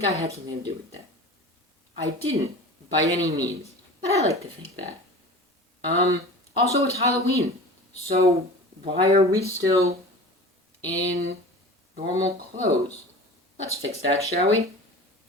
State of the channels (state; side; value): normal; both; correlation 0.37